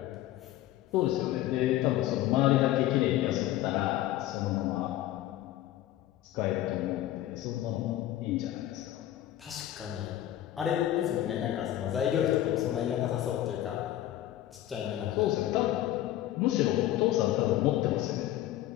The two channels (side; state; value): right; quieter; 13.5 dB